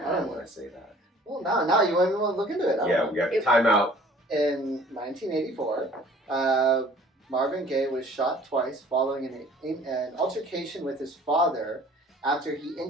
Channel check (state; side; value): normal; both; correlation 0.52